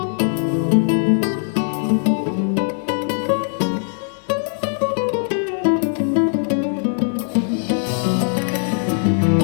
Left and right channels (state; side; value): silent; right; 61 dB below the other